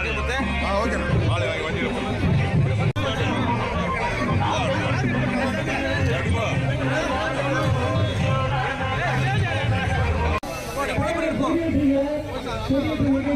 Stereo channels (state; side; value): identical; both; correlation 1.00